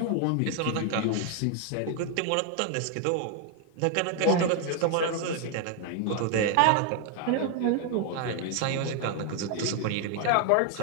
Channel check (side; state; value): both; different; correlation 0.01